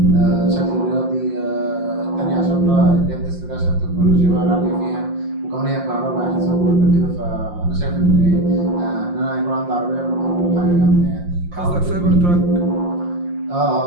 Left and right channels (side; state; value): left; late; 5.7 ms